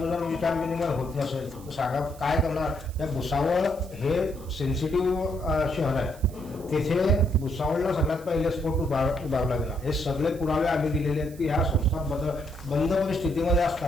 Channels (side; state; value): right; noise; hiss, 22 dB below the sound